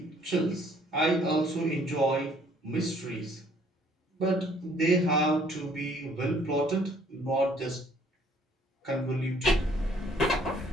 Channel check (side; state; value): both; normal; correlation 0.60